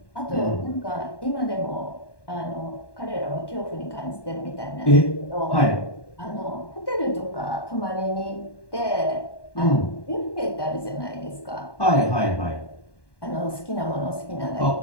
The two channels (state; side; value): late; right; 1.2 ms